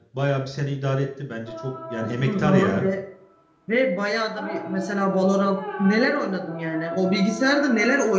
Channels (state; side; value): identical; both; correlation 1.00